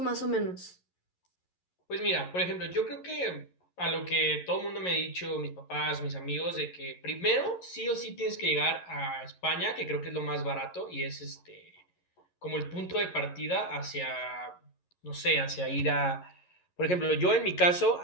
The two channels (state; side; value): late; right; 11 ms